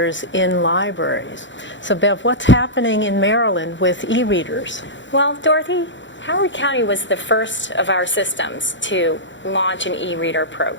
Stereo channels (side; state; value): right; late; 0.54 ms